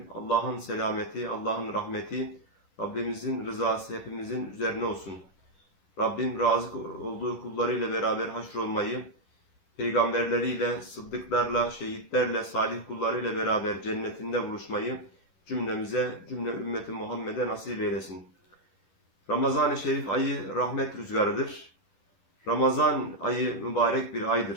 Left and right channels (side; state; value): right; late; 11 ms